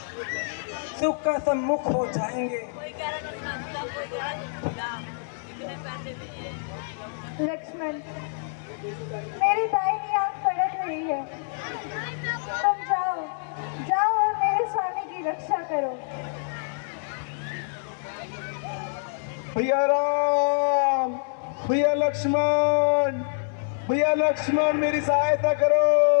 सुख का सम्मुख हो जाएंगे। लक्ष्मण, मेरी दाहिनी आंख फड़क रही है। तुम जाओ और मेरे स्वामी की रक्षा करो। भैया राम, भैया लक्ष्मण, भैया लक्ष्मण, मेरी सहायता करो।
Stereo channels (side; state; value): right; silent; 61 dB below the other